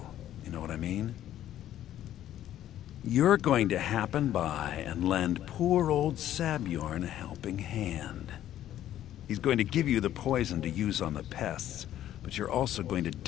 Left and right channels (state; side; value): quieter; right; 12.1 dB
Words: you know what I mean? You're going to happen by and lend poor old Sabjorn a helping hand. He's going to give you the poison to use on the pests, but you're also going to